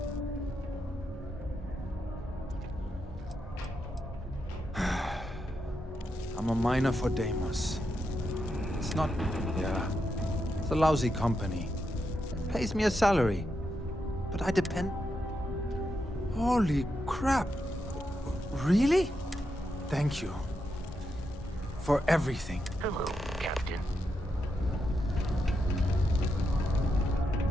I'm a miner for Deimos. It's not... yeah. It's a lousy company. It pays me a salary. But I depend... Holy crap. Really? Thank you. For everything. Hello, Captain.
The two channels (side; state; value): both; normal; correlation 0.84